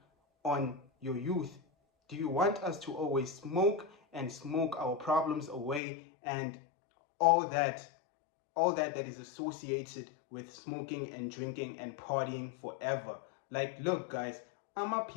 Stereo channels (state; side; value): drops out; right; at 5.8 s